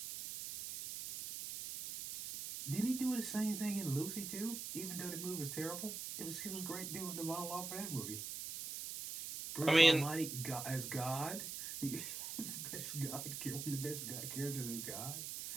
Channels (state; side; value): noise; right; hiss, 6 dB below the sound